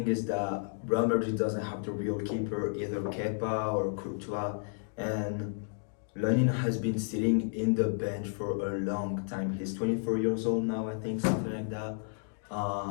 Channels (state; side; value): silent; right; digital silence